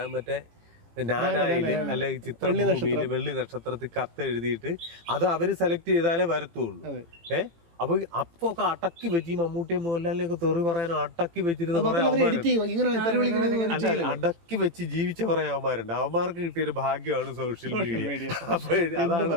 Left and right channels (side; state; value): left; late; 18 ms